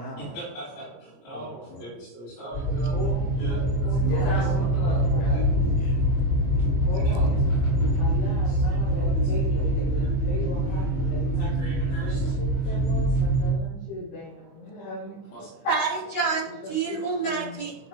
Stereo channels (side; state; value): right; late; 25 ms